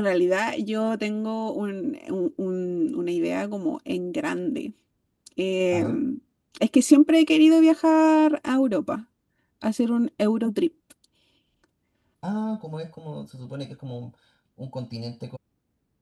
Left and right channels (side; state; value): both; identical; correlation 1.00